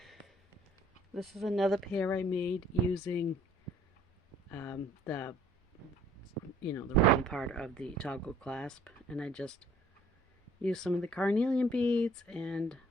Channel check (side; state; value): both; normal; correlation 0.57